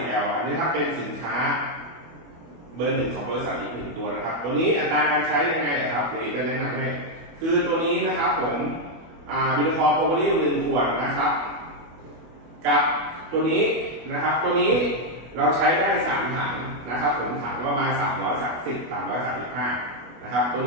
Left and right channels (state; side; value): late; left; 25 ms